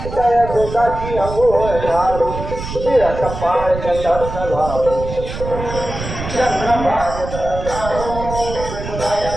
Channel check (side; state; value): right; noise; rumble, 8 dB below the sound